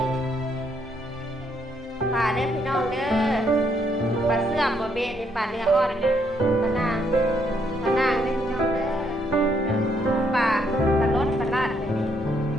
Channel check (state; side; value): normal; both; correlation 0.72